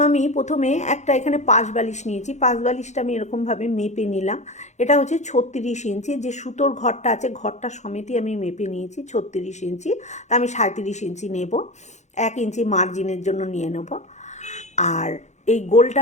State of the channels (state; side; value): late; right; 0.33 ms